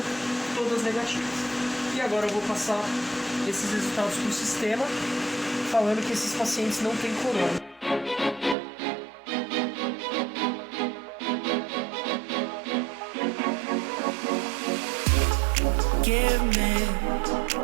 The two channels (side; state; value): left; drops out; at 8.6 s